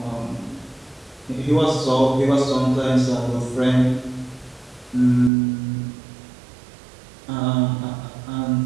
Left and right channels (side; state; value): left; drops out; at 5.3 s